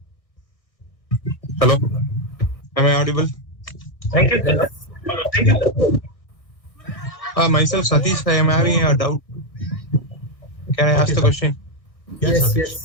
Hello. Am I audible? Thank you, sir. Thank you, sir. Myself, Satish, I am having a doubt. Can I ask the question?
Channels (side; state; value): right; late; 1.6 ms